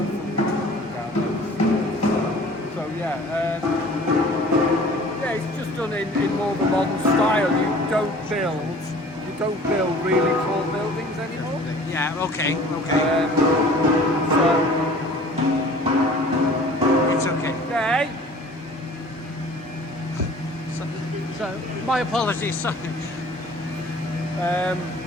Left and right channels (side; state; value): both; normal; correlation 0.48